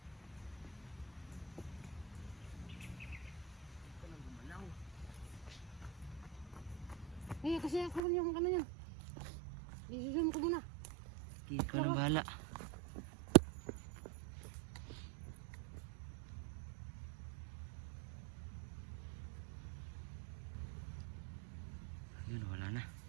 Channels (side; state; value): left; drops out; at 8.0 s